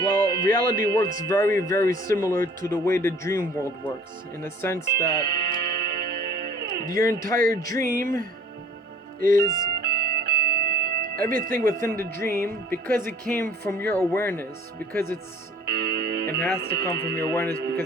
Well, reality works very, very similar to the way the dream world works, in the sense that your entire dream is everything within the dream, because it came from your awareness, because it has to come from your awareness,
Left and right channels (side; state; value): both; normal; correlation 0.52